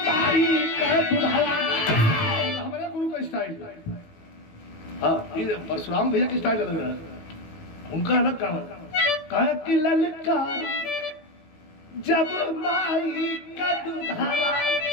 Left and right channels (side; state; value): right; late; 18 ms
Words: कहे तुझला हमारे गुरु का स्टाइल हाँ ये परशुराम भैया की स्टाइल अलग है उनका अलग काम कहे कि ललकारी जब माई का तुझला